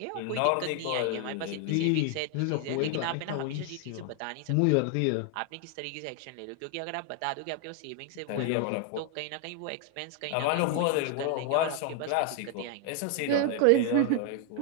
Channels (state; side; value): different; both; correlation 0.01